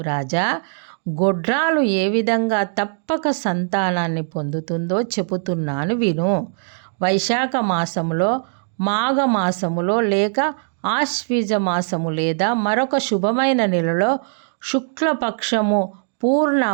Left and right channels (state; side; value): silent; left; digital silence